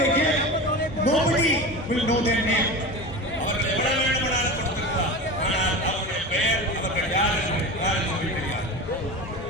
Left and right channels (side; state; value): both; normal; correlation 0.28